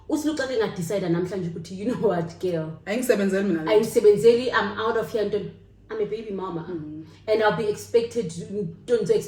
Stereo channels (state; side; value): identical; both; correlation 1.00